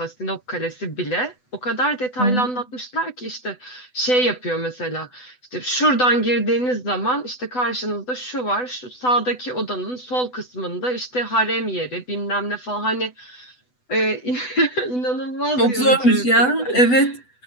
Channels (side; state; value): right; late; 8.0 ms